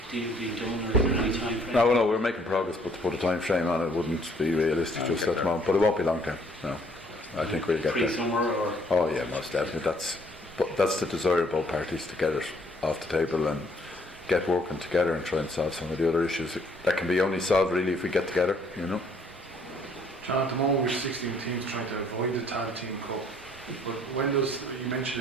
deal being done, or is there any time frame? No, we're making progress, but to put a time frame on it wouldn't be realistic just at the moment. But it won't be long term. No, I think we'll get there. Pre-summer, or? Oh yeah, most definitely. That's the desire of both parties, to get it off the table and get working together and try and solve some of the other issues that can be only solved really if we get together. John, at the moment we're 16 teams trying to avoid the Tag Team Cup. But when does, you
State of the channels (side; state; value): both; normal; correlation 0.63